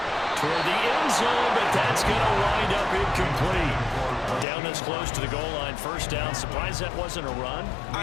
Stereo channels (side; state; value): right; drops out; at 4.5 s